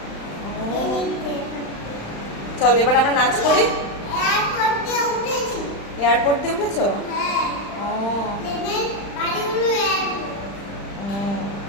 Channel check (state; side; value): late; right; 35 ms